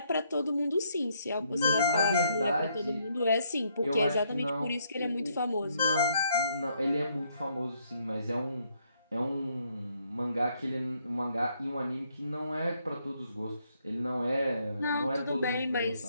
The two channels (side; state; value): both; inverted; correlation -0.72